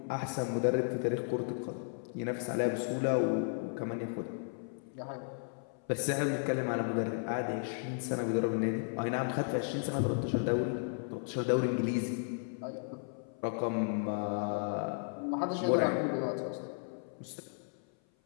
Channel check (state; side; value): silent; right; 55 dB below the other